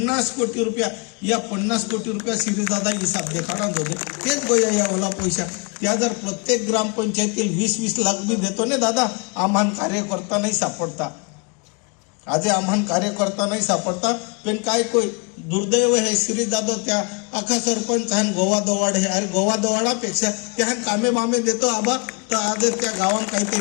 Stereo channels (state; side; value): quieter; right; 33.1 dB